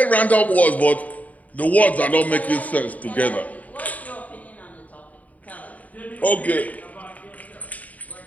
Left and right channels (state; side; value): late; right; 0.073 ms